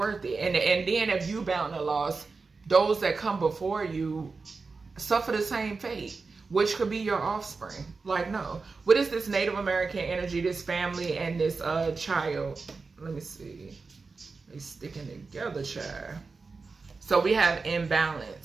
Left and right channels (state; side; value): quieter; left; 4.3 dB